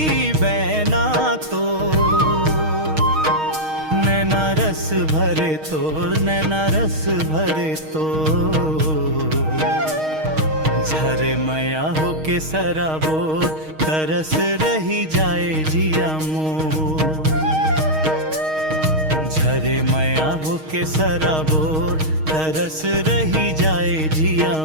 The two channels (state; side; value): late; left; 6.4 ms